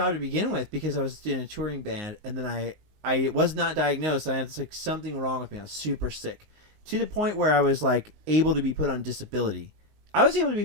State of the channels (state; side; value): late; left; 19 ms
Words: to begin with because I was in a touring band, and then I was not diagnosed. I had like something wrong with me. I was super sick to the point where I was like able to be put on disability. I was able to